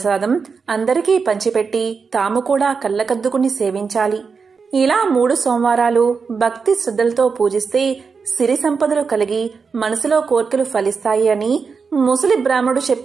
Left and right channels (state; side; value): quieter; left; 5.3 dB